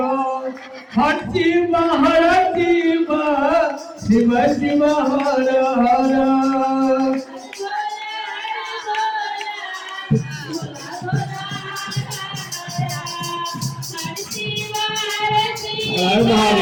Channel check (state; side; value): identical; both; correlation 1.00